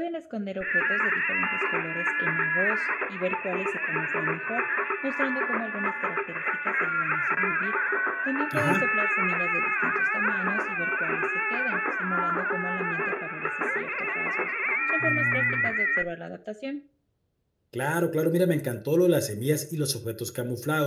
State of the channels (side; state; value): both; identical; correlation 1.00